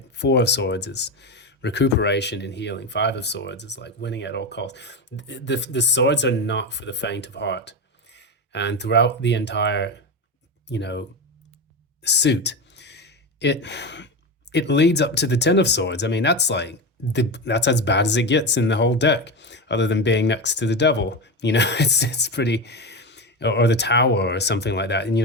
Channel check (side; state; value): both; normal; correlation 0.18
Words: Four of Swords is recuperation and healing. Five of Swords is like winning at all costs. The swords are not for the faint of heart. And throughout the entire, suit, it leads up to the Ten of Swords. I mean, that's like that's as bad as it gets in the whole deck, other than being next to the devil. It's pretty, or the Tower or something like that. And